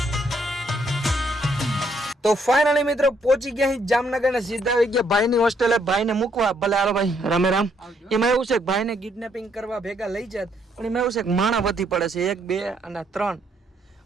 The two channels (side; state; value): both; normal; correlation 0.71